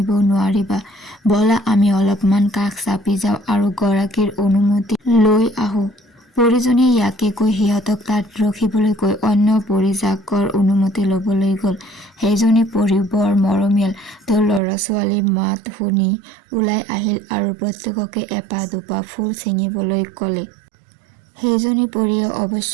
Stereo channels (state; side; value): drops out; left; at 14.6 s